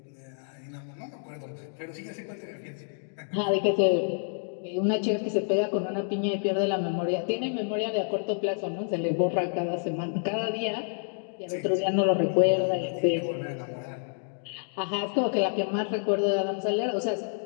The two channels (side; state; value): right; silent; digital silence